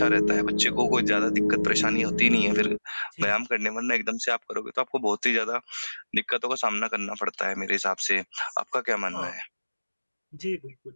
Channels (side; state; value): both; inverted; correlation -1.00